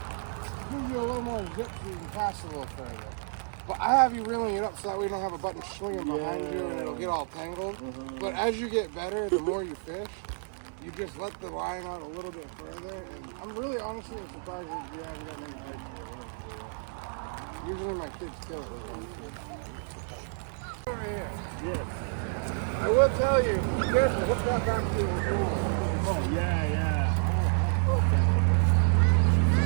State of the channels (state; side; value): silent; left; 58 dB below the other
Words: gives you a little more zip so you can cast a little further. But I have you reeling it up so that we don't have a button swinging behind you and it'll get all tangled. But as you get better, the more you fish, you just let the line out a little bit further. And I'm really honestly surprised that you haven't got many bites. Usually my kids kill it with one fish. Over here. Yes. I will tell you, be careful, hook that back to your door. Oh, yeah.